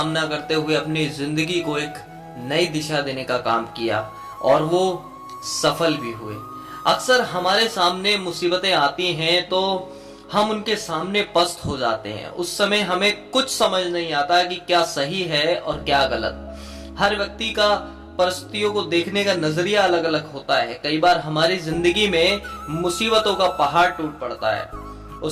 करते हुए अपनी जिंदगी को एक नई दिशा देने का काम किया और वो सफल भी हुए। अक्सर हमारे सामने मुसीबतें आती हैं तो हम उनके सामने पस्त हो जाते हैं। उस समय हमें कुछ समझ नहीं आता कि क्या सही है और क्या गलत। हर व्यक्ति का परिस्थितियों को देखने का नजरिया अलग अलग होता है। कई बार हमारी जिंदगी में मुसीबतों का पहाड़ टूट पड़ता है।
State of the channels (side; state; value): both; identical; correlation 1.00